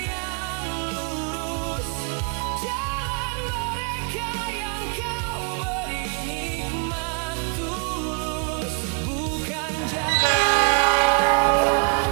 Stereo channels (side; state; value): left; quieter; 35.9 dB